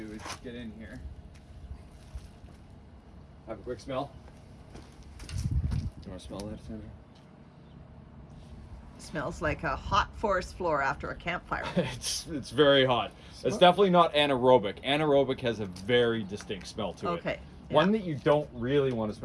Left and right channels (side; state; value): both; identical; correlation 1.00